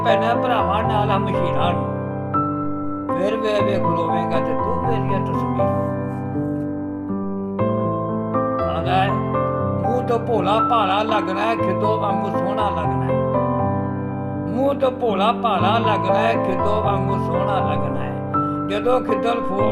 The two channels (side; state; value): both; identical; correlation 1.00